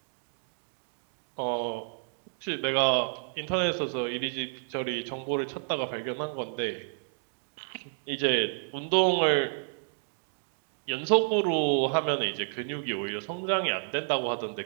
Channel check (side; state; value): left; silent; digital silence